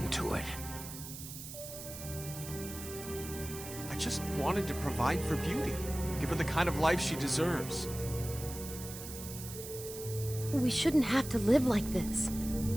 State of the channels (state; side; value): noise; right; hiss, 11 dB below the sound